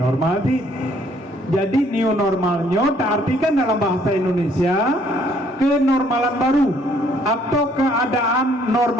sih. Jadi new normalnya artikan dalam bahasa Indonesia kenormalan baru atau keadaan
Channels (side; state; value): both; normal; correlation 0.63